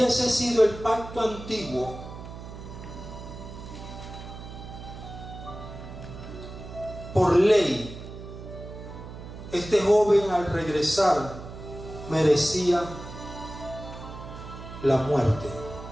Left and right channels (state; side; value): noise; right; hum, 12 dB below the sound